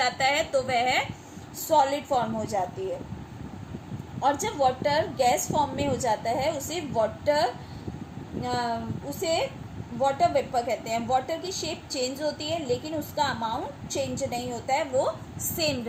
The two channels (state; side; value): identical; both; correlation 1.00